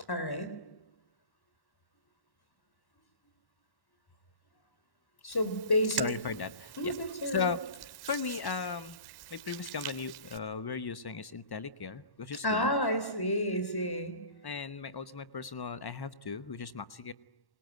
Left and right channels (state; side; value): late; right; 1.1 ms